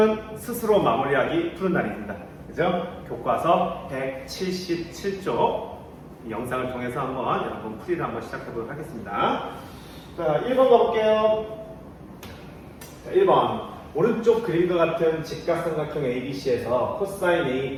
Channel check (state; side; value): identical; both; correlation 1.00